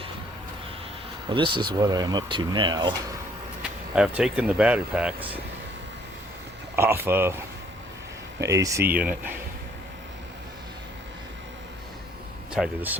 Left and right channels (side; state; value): both; normal; correlation 0.62